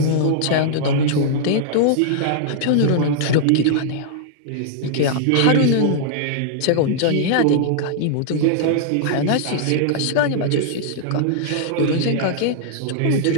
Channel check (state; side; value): different; both; correlation -0.01